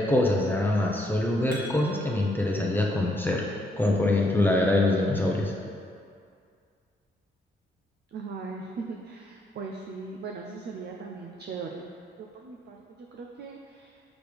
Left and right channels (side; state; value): both; normal; correlation 0.74